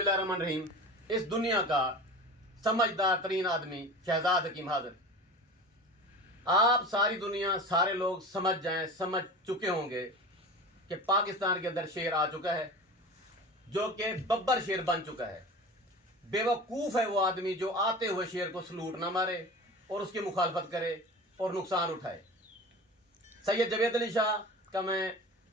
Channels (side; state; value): both; normal; correlation 0.34